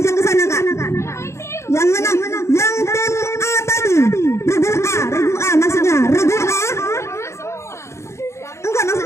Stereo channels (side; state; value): right; late; 0.13 ms